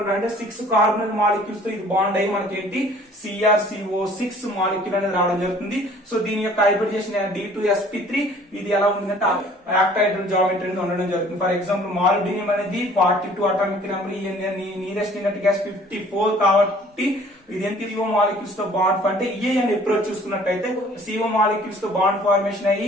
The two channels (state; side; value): normal; both; correlation 0.53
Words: అంటే 6 కార్బన్ మాలిక్యూల్స్ తో ఇది బాండ్ అయ్యి మనకి ఏంటి CrCO6 మాలిక్యూల్ అనేది రావడం జరుగుతుంది. సో దీని యొక్క హైబ్రిడైజేషన్ D2sp3 ఇది ఎలా ఉందంటే ఆక్టాహెడ్రల్ జామెట్రీ అనేది ఉండడం జరుగుతుంది. ఫర్ ఎగ్జాంపుల్ మాలిబ్డినియం అనేది 42 atomic number, nearest inert gas 54 కాబట్టి ఇది CO మాలిక్యూల్స్ తో బాండ్ అంటే అని అప్రోచ్ చూసుకున్నట్లయితే CO మాలిక్యూల్స్ తో బాండ్ ఫార్మేషన్